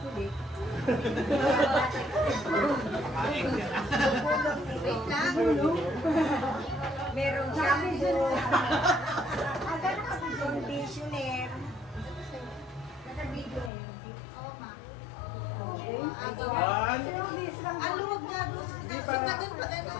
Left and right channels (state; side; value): drops out; right; at 13.7 s